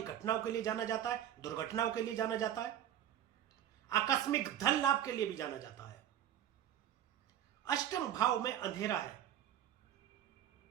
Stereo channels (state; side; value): quieter; left; 10.9 dB